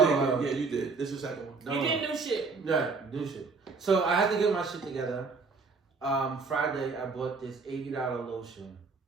Yeah, you did. This is your second one. You did new shit. Right, new shit. So I had to get my shit together. Friday, I bought this $80 lotion.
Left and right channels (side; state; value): left; quieter; 4.4 dB